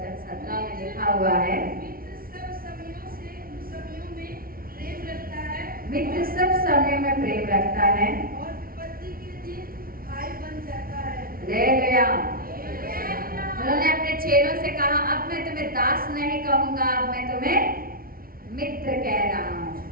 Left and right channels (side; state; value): left; late; 0.43 ms